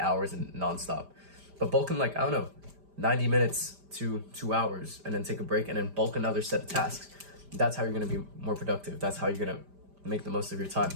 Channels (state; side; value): late; left; 5.0 ms